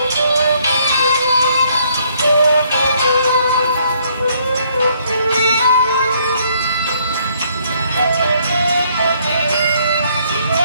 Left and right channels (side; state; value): both; inverted; correlation -0.67